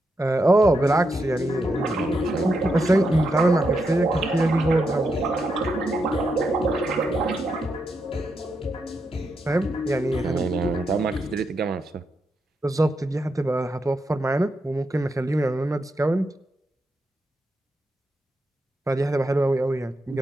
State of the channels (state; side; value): normal; both; correlation 0.84